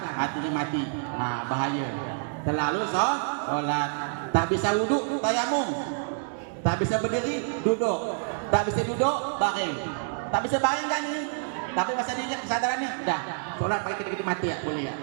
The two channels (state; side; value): silent; left; digital silence